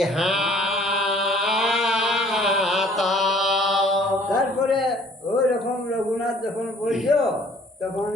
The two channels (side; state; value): both; normal; correlation 0.56